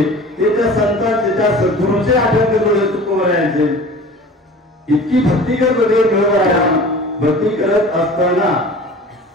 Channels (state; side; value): normal; both; correlation 0.41